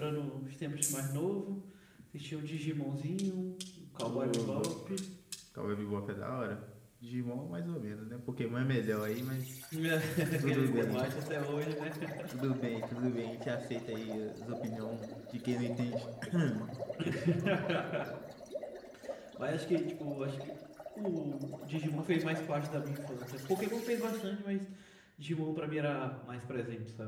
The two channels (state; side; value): identical; both; correlation 1.00